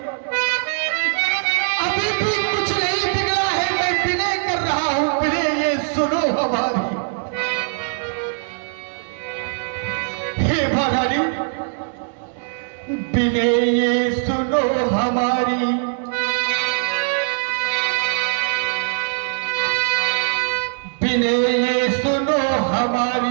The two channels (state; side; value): silent; left; 63 dB below the other